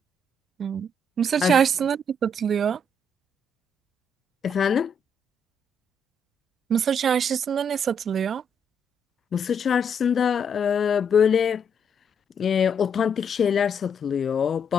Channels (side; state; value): both; normal; correlation 0.73